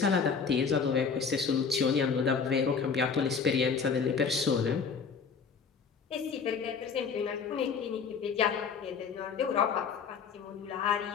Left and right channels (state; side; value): quieter; right; 5.9 dB